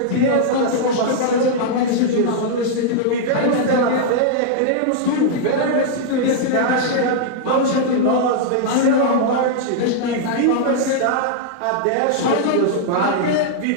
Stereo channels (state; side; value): different; both; correlation -0.02